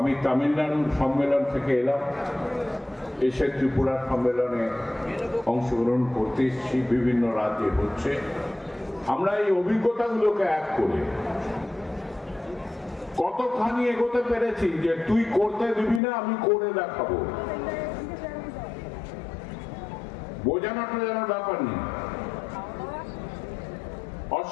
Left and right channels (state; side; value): drops out; right; at 16.0 s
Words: তামিলনাড়ুর সম্মেলন থেকে এলাম, এসে ত্রিপুরার সম্মেলনে অংশগ্রহণ করতে এসেছি, বিভিন্ন রাজ্যে হচ্ছে। আমরা এই অভিজ্ঞতাগুলোকে এক করে কতখানি এগোতে পেরেছি যে তুই করতে দিবি না, আমি করে দেখাবো, বোঝানোটা যেন ব্যাপার নেই।